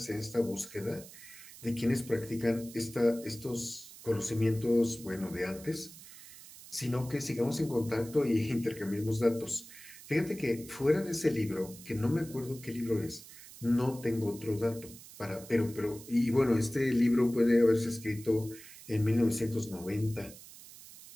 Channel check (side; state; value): right; noise; hiss, 17 dB below the sound